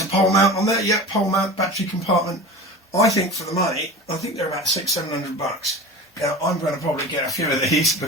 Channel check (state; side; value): normal; both; correlation 0.33